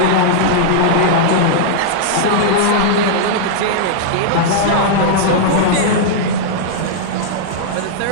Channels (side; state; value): both; different; correlation -0.02